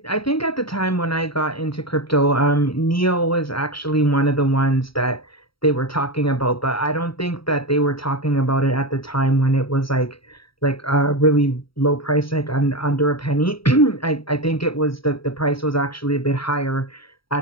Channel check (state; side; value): late; right; 0.75 ms